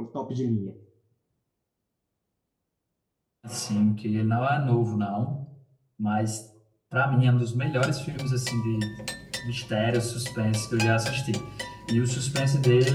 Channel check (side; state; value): both; identical; correlation 1.00